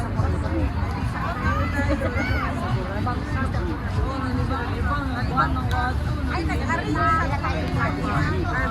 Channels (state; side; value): identical; both; correlation 1.00